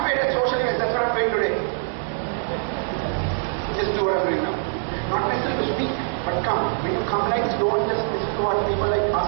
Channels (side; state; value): left; silent; 61 dB below the other